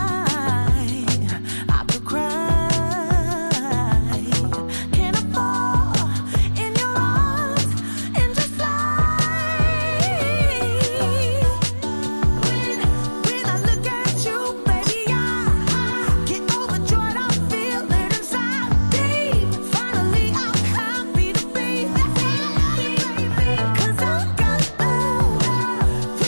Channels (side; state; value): both; inverted; correlation -1.00